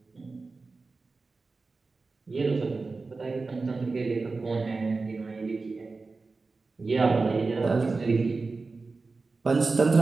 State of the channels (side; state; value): left; quieter; 3.9 dB